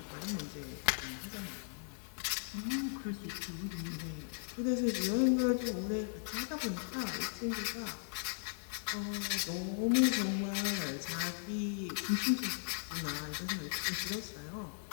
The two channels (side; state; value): right; silent; digital silence